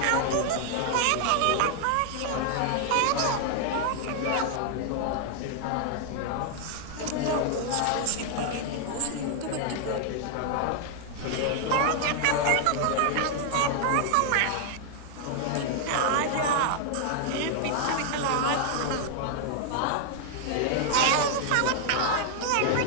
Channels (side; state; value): both; different; correlation 0.00